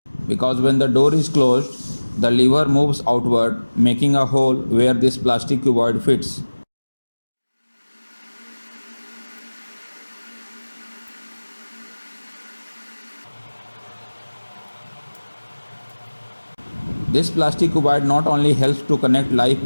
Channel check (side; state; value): both; inverted; correlation -1.00